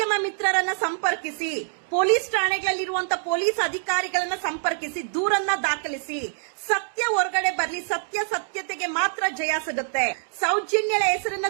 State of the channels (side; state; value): left; silent; digital silence